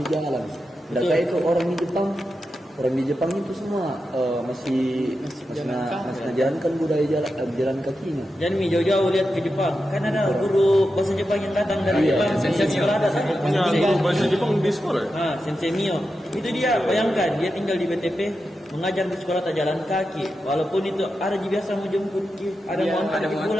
Dan kayak itu orang di Jepang itu semua masih menjalankan budaya jalan kakinya. Jangan jauh-jauh lihat ke Jepang, kan ada guru bahasa Jepang yang datang dari Jepang, sekolah ada Punya guru bahasa Jepang di sekolah? Sensei Mio. Itu dia, bayangkan dia tinggal di BTP, mengajar di sekolah tak jalan kaki. Walaupun itu ada biasa mau jemput, ada mau antar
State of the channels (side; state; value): both; normal; correlation 0.89